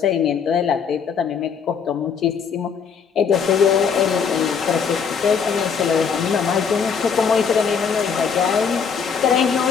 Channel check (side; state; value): right; quieter; 6.5 dB